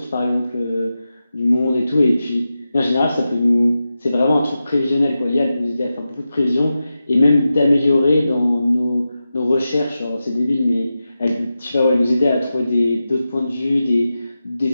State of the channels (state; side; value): inverted; both; correlation -0.92